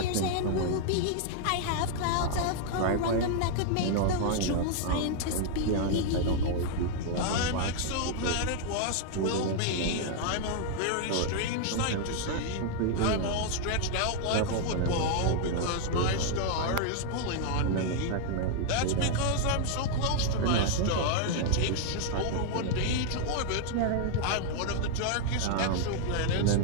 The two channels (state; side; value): different; both; correlation 0.00